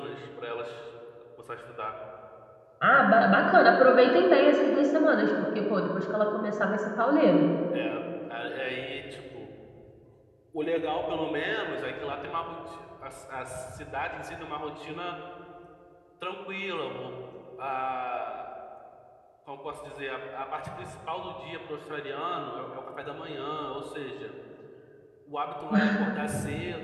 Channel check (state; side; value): identical; both; correlation 1.00